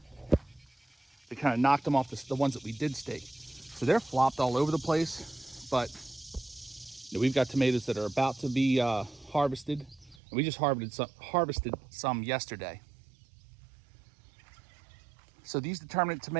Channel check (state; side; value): drops out; left; at 10.2 s